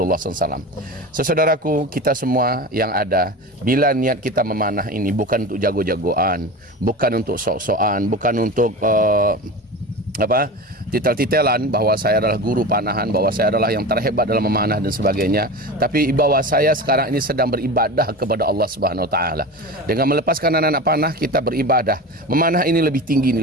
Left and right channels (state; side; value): normal; both; correlation 0.29